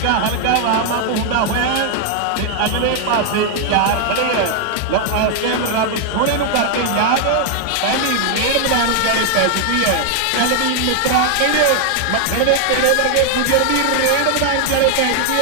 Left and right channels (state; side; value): different; both; correlation 0.00